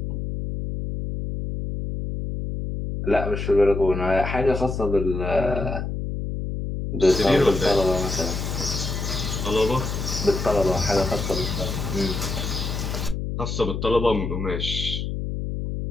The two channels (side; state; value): left; noise; hum, 4 dB below the sound